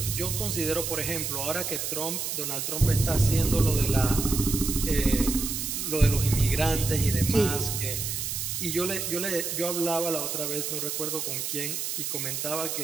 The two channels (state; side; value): noise; right; hiss, 3 dB below the sound